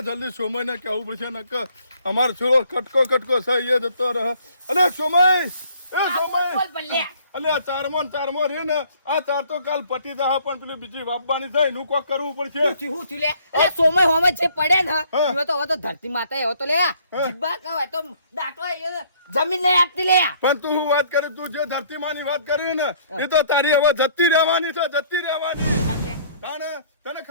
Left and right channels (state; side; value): inverted; both; correlation -0.60